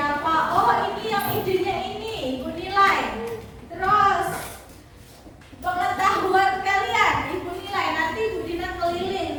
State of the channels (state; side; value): identical; both; correlation 1.00